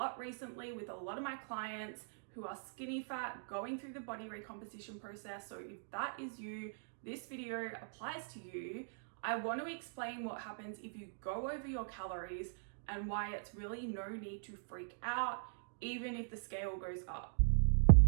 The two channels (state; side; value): silent; left; digital silence